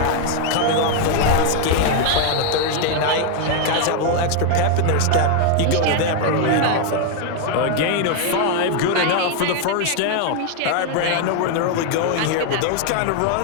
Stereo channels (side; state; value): both; different; correlation 0.00